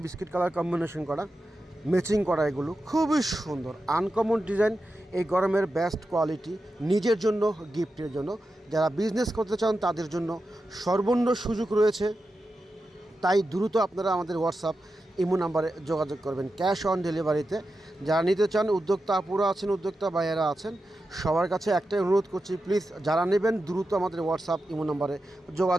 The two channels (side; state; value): both; normal; correlation 0.90